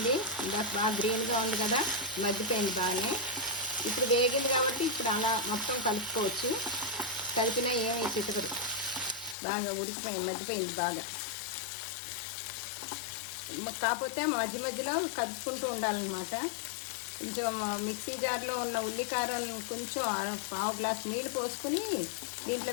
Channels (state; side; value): drops out; right; at 9.3 s